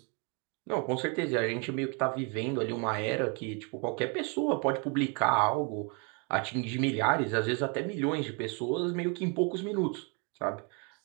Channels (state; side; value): quieter; left; 35.0 dB